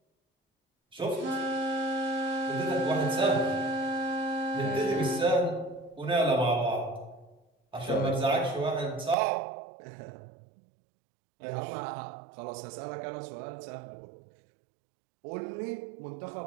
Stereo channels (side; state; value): left; drops out; at 9.2 s